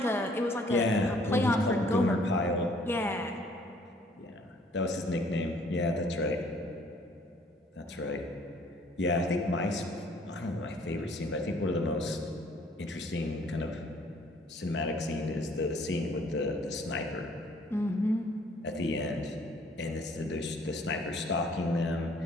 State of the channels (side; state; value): both; normal; correlation 0.59